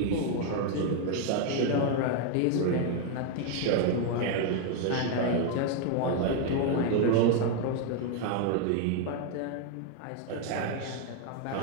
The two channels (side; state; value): both; different; correlation 0.00